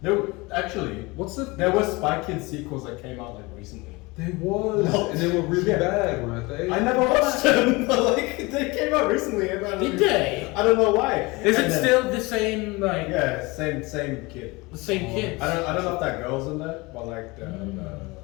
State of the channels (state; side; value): quieter; right; 23.9 dB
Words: No, actually, What's the? there were Spy Kids sequels that came out like recently. There was, No. and they were really Yeah. bad, weren't they? I never watched them. Like they came out recently, and I don't Did even- they? I don't know why. Is And it then- still the same like Yeah, same kid. the same kids? I don't know if that girl's in there, but like